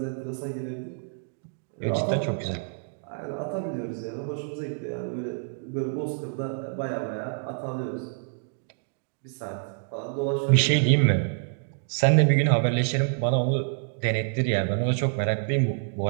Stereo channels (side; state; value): left; silent; digital silence